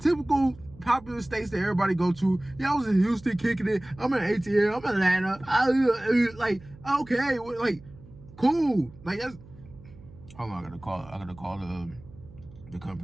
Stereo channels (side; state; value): right; noise; hum, 21 dB below the sound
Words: typical popular states that everybody go to. Yeah, I was in Houston kicking it. I'm in ATL. I'm in Atlanta. Like, okay, like, cool. Like, that's. Hold on, I gotta call the